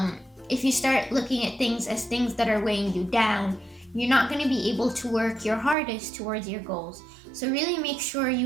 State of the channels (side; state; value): left; drops out; at 5.8 s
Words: If you start looking at things as things that are weighing you down, you're not going to be able to work your hardest towards your goals. So really make sure